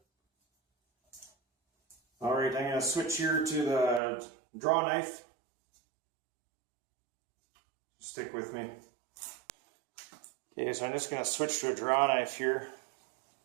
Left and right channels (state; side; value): drops out; left; at 4.0 s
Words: Alright, I'm going to switch here to the draw knife. Stick with me. Okay, so I'm just going to switch to a draw knife here.